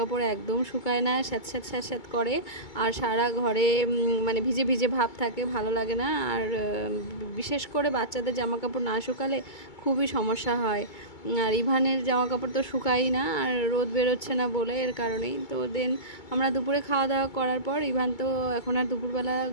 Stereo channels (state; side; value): late; right; 2.2 ms